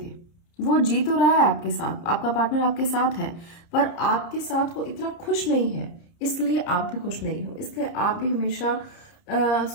वो जी तो रहा है आपके साथ, आपका पार्टनर आपके साथ है, पर आपके साथ वो इतना खुश नहीं है, इसलिए आप भी खुश नहीं हो। इसलिए आप भी हमेशा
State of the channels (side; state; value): right; late; 30 ms